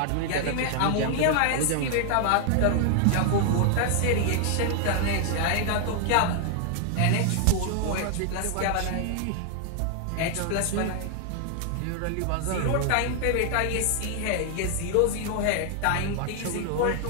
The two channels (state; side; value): different; both; correlation 0.00